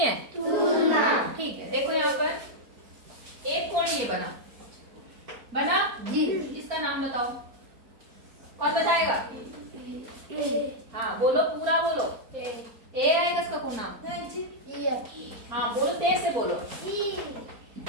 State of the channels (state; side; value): late; left; 4.4 ms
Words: तुलना। ठीक है, देखो यहाँ पर एक कोण ये बना जी, इसका नाम बताओ, कौन बताएगा? हाँ बोलो, पूरा बोलो। ए आएगा इसका कौन नाम? हाँ बोलो, तेज से बोलो।